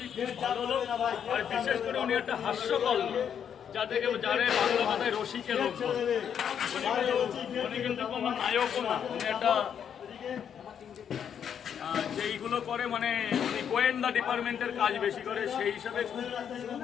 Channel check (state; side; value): quieter; right; 8.3 dB